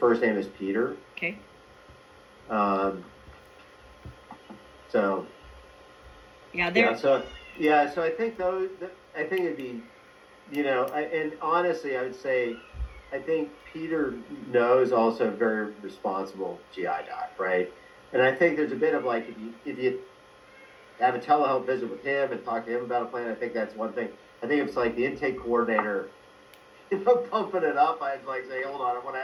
name is Peter. Okay. So. Yeah, so I think I think it'd be, and honestly, I would say, I think Peter knows also a very responsible GI doc, right? And I think there's a bit of like if you have a telehealth visit with him and talk to him about a plan, I think that's one thing. I think it's like the intake coordinator, pumping it up. I'd like say, hold on, I want to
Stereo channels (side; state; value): both; identical; correlation 1.00